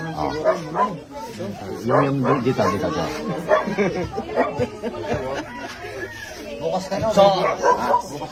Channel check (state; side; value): identical; both; correlation 1.00